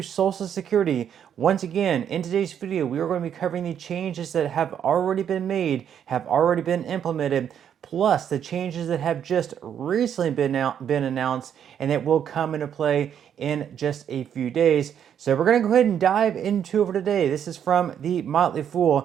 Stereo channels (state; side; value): quieter; left; 8.9 dB